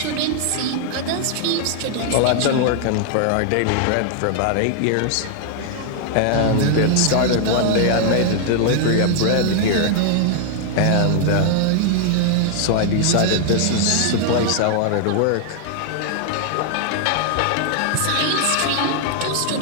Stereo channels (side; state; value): both; different; correlation 0.00